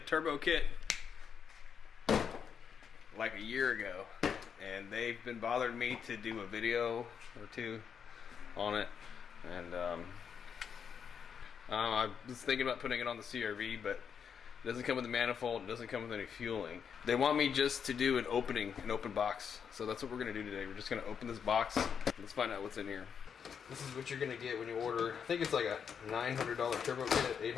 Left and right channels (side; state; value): right; quieter; 7.2 dB